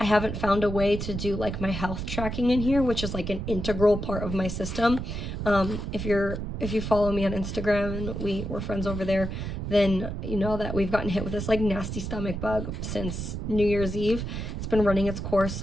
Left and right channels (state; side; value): noise; right; rumble, 5 dB below the sound